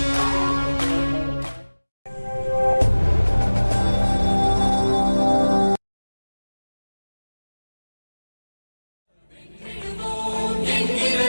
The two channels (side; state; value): both; inverted; correlation -1.00